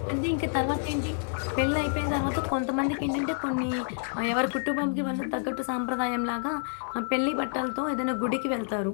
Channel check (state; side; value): silent; right; digital silence